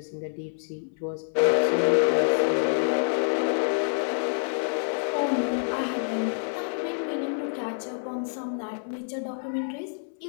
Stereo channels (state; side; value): silent; right; 60 dB below the other